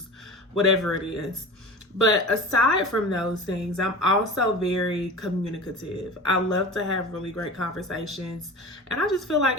whatever it is. But aside from those things, I'm also very communicative. I love to have really great conversations. And I just feel like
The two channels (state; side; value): normal; both; correlation 0.34